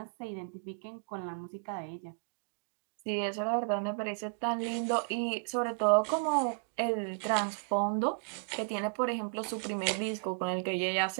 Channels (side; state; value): left; quieter; 39.6 dB